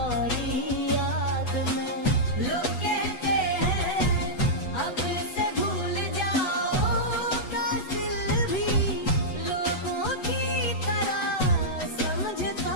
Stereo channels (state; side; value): late; right; 8.1 ms